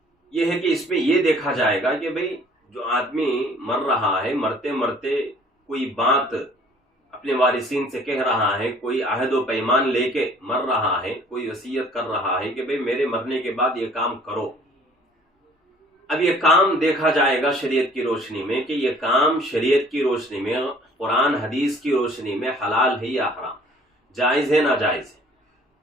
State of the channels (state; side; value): normal; both; correlation 0.54